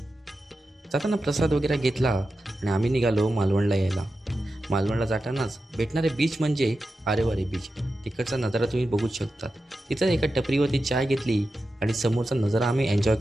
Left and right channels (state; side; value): normal; both; correlation 0.91